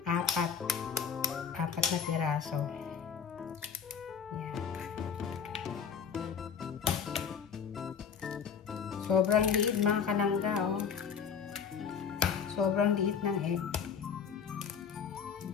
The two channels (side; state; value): right; quieter; 6.8 dB